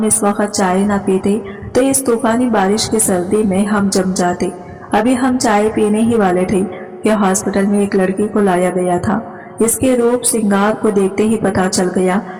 इस वक्त चाय न पीते तो इस तूफानी बारिश की सर्दी में हम जम जाते। अभी हम चाय पीने ही वाले थे कि हॉस्पिटल में एक लड़की को लाया गया था। इसके रूप श्रृंगार को देखते ही पता चल गया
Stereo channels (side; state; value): both; identical; correlation 1.00